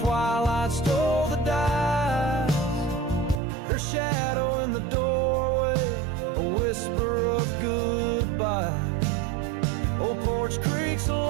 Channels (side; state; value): left; drops out; at 3.4 s